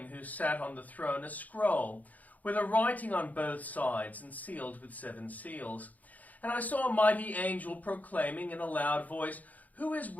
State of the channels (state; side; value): late; right; 0.077 ms